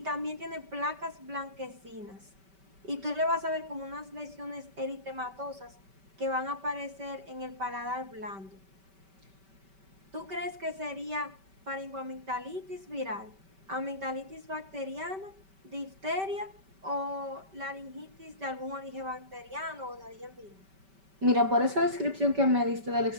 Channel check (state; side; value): late; left; 5.2 ms